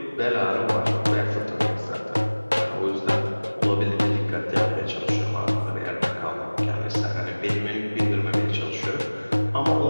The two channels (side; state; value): both; inverted; correlation -1.00